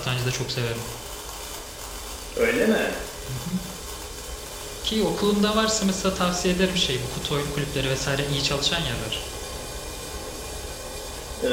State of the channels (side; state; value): both; identical; correlation 1.00